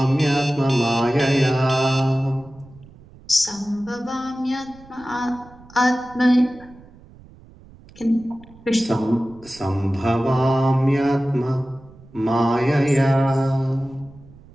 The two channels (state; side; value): noise; right; rumble, 23 dB below the sound